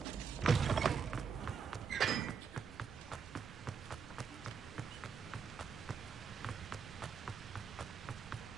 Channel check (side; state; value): left; quieter; 6.2 dB